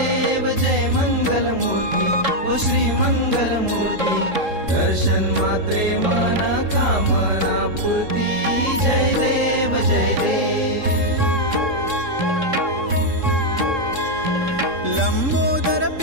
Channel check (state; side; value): late; left; 3.7 ms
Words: जय मंगल मूर्ती ओ श्री मंगल मूर्ती दर्शन मात्रे मनोकामना पूर्ती जय देव जय देव लंबोदर